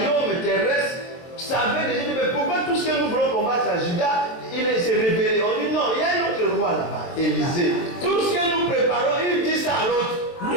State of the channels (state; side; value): late; right; 22 ms